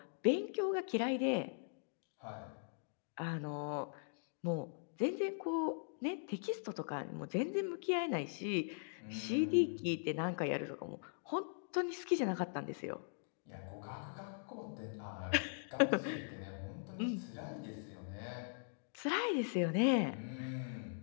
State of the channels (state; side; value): silent; right; digital silence